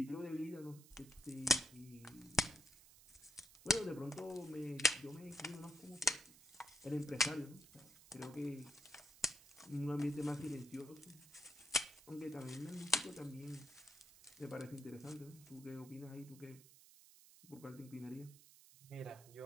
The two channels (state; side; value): noise; right; hiss, 21 dB below the sound